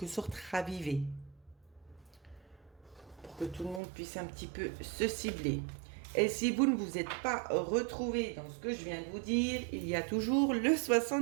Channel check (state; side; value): drops out; left; at 3.8 s